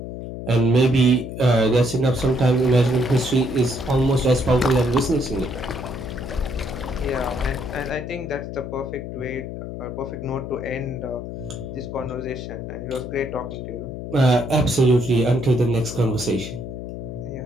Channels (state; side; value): noise; left; hum, 8 dB below the sound